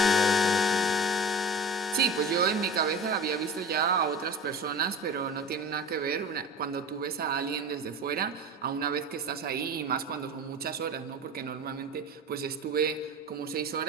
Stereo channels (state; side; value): normal; both; correlation 0.33